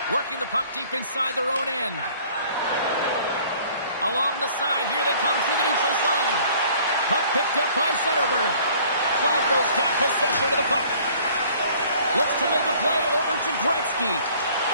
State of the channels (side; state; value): both; inverted; correlation -0.54